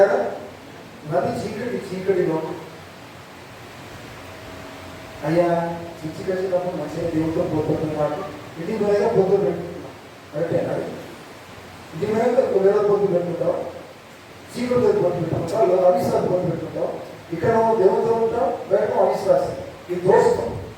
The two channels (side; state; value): both; identical; correlation 1.00